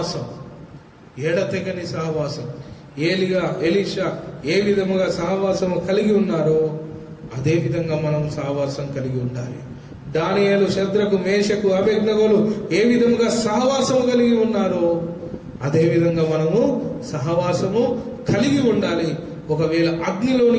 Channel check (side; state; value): both; identical; correlation 1.00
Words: ఎడతెగని సహవాసం. ఎలీషా ఏ విధముగా సహవాసం కలిగి ఉన్నారో అదే విధంగా మనం సహవాసం కలిగి ఉండాలి. దానియేలు, శద్రకు, మేషకు, అబేద్నెగోలు ఏ విధంగా సహవాసం కలిగి ఉన్నారో అదే విధంగా మనము సహవాసము కలిగి ఉండాలి. ఒకవేళ